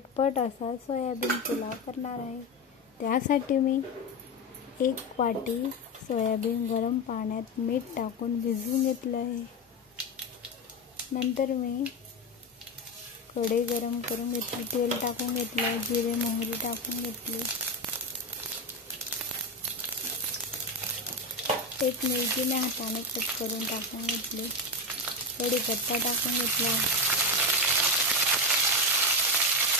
असा सोयाबीन पुलाव करणार आहे. त्यासाठी मी 1 वाटी सोयाबीन गरम पाण्यात मीठ टाकून भिजवून घेतलं आहे. नंतर मी कढई गरम करून घेतली, तेल टाकून घेतलं, जिरे मोहरी टाकून घेतली, एक मिरची मी हाताने कट करून टाकून घेतली, कढीपत्ता टाकून घेतला,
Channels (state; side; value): normal; both; correlation 0.15